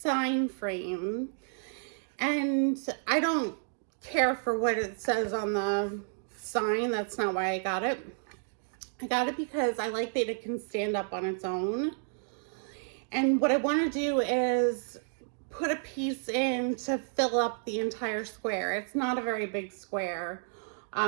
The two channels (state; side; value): silent; left; digital silence